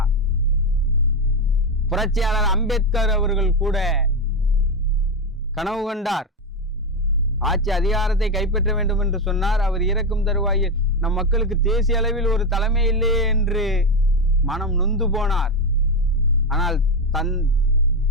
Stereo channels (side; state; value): both; normal; correlation 0.10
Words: புரட்சியாளர் அம்பேத்கர் அவர்கள் கூட கனவு கண்டார், ஆட்சி அதிகாரத்தை கைப்பற்ற வேண்டும் என்று சொன்னார். அவர் இறக்கும் தருவாயில் நம் மக்களுக்கு தேசிய அளவில் ஒரு தலைமை இல்லையே என்று மனம் நொந்து போனார். ஆனால்